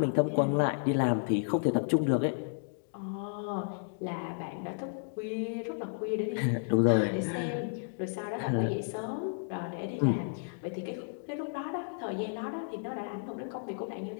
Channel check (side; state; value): right; silent; digital silence